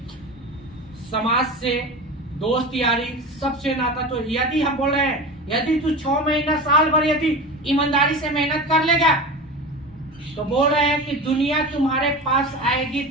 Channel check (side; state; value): both; normal; correlation 0.30